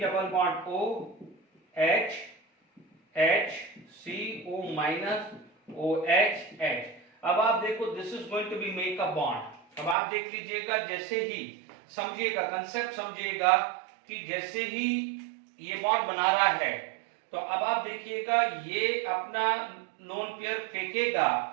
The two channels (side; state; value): left; drops out; at 10.0 s